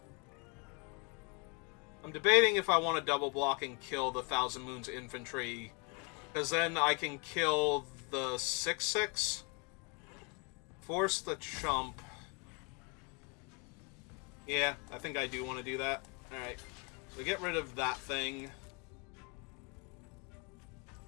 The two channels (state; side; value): quieter; right; 33.1 dB